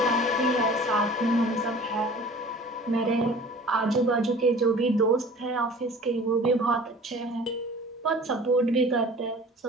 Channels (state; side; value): normal; both; correlation 0.44